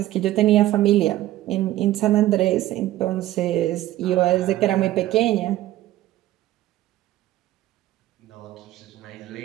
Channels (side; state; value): left; quieter; 14.9 dB